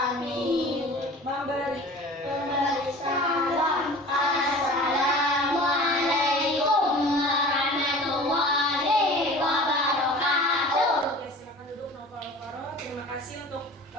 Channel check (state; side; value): normal; both; correlation 0.41